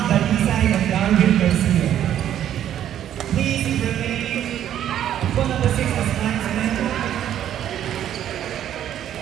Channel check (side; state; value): left; quieter; 10.8 dB